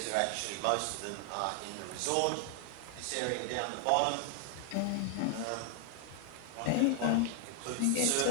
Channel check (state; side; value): different; both; correlation 0.00